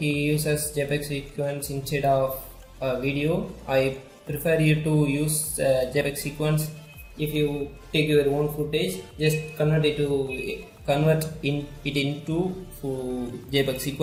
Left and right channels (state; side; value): identical; both; correlation 1.00